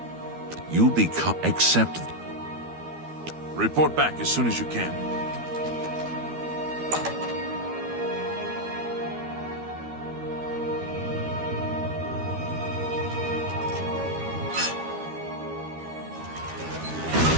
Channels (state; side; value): late; left; 12 ms